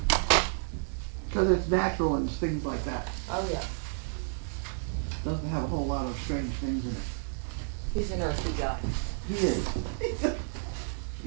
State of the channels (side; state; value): left; silent; 57 dB below the other